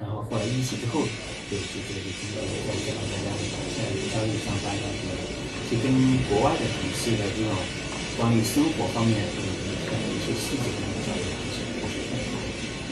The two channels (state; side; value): identical; both; correlation 1.00